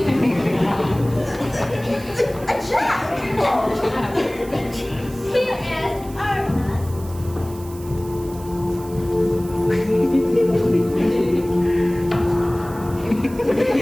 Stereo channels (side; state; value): right; noise; hiss, 20 dB below the sound